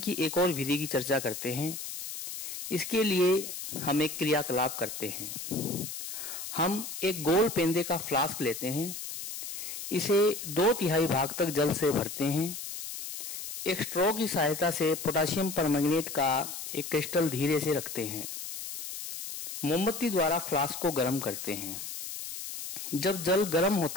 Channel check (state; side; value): noise; left; hiss, 8 dB below the sound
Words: एक और विधि की चर्चा करते हैं। इसके लिए हम एक क्रियाकलाप करते हैं। हम एक गोल पेंदे का फ्लास्क लेते हैं, इसे 2/3 भाग तक जल से भरते हैं। एक स्ट्रॉ की सहायता से पोटेशियम परमैंगनेट का एक क्रिस्टल धीरे से रखते हैं। मोमबत्ती द्वारा फ्लास्क को गर्म करते हैं। जब जल गर्म